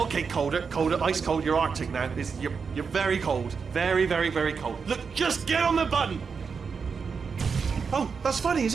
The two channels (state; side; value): quieter; left; 5.6 dB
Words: colder, ice cold. You're Arctic now. You're very cold, very, very, very cold. Look, just get on the button. Oh, that's funny, is